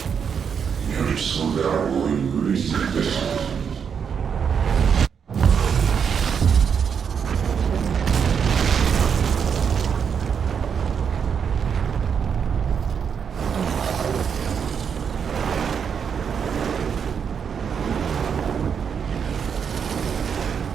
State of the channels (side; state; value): left; quieter; 7.0 dB